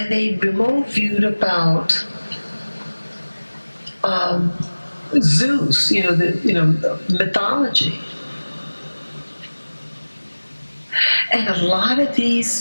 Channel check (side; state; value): both; inverted; correlation -1.00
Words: they remote viewed about Zeus, the mythology. And a lot of